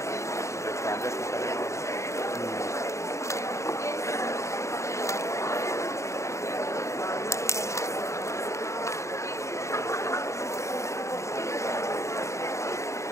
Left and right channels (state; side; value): late; right; 0.14 ms